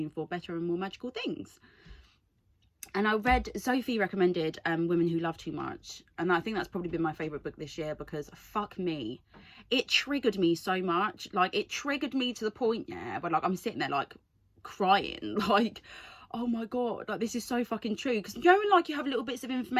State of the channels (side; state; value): both; identical; correlation 1.00